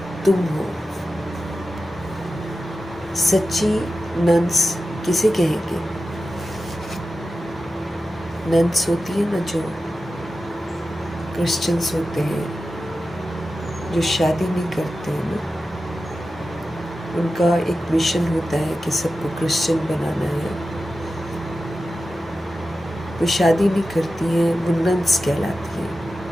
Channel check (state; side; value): normal; both; correlation 0.93